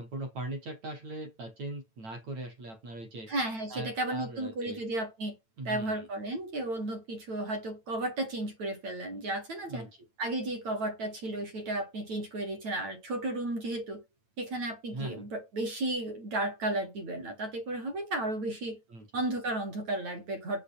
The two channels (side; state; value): left; late; 9.0 ms